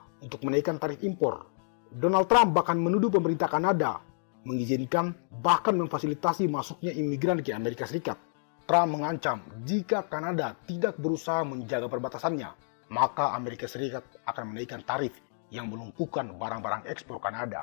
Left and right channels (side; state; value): right; silent; digital silence